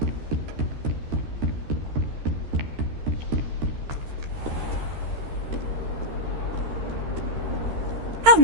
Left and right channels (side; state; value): left; late; 13 ms